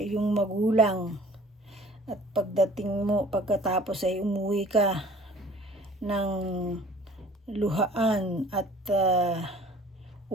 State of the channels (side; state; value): both; normal; correlation 0.50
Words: magulang. At pagkatapos ay umuwi ka ng luhaan at